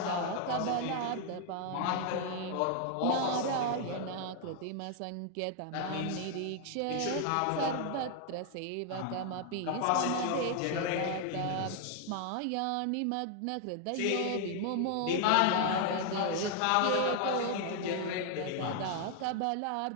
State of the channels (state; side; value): different; both; correlation 0.00